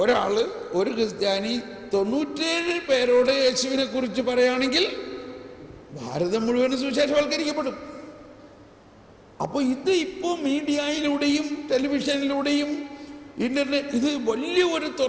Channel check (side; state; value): both; identical; correlation 1.00